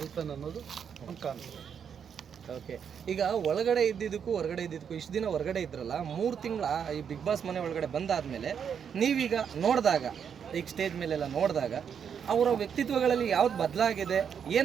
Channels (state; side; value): quieter; left; 7.5 dB